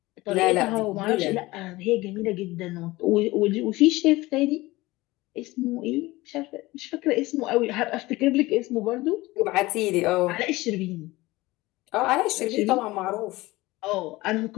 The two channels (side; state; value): right; quieter; 19.9 dB